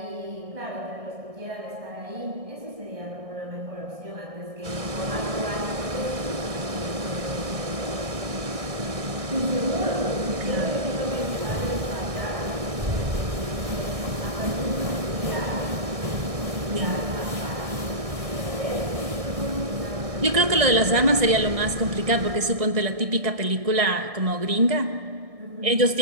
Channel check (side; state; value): left; late; 1.6 ms